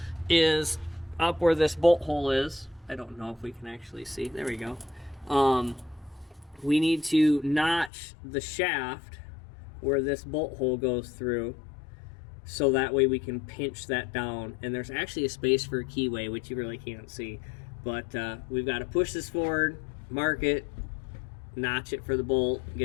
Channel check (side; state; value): right; drops out; at 7.9 s